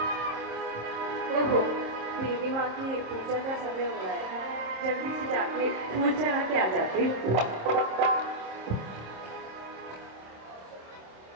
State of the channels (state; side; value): late; left; 26 ms